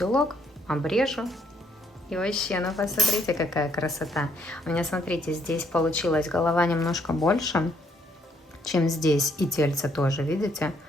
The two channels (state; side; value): normal; both; correlation 0.69